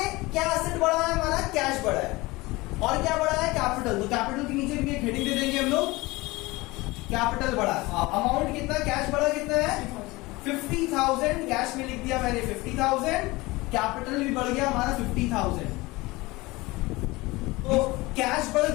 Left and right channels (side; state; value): right; quieter; 21.8 dB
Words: क्या एसेट बढ़ा है हमारा? कैश बढ़ा है। और क्या बढ़ा है? कैपिटल। तो कैपिटल के नीचे भी एक हेडिंग दे देंगे हम लोग, कैपिटल बढ़ा। अमाउंट कितना? कैश बढ़ा कितना है? 50,000 कैश में लिख दिया मैंने 50,000, कैपिटल भी बढ़ गया हमारा 50,000। तो कैश बढ़